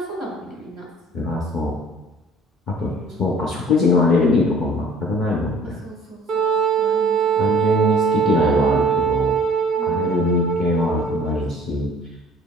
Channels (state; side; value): normal; both; correlation 0.51